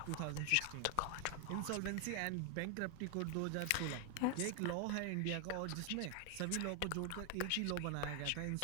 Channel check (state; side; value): different; both; correlation 0.00